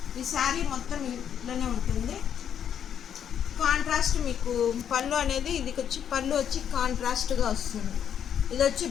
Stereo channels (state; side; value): quieter; right; 8.9 dB